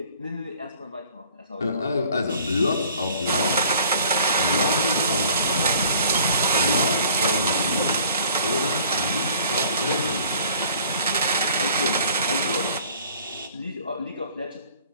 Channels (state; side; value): inverted; both; correlation -0.52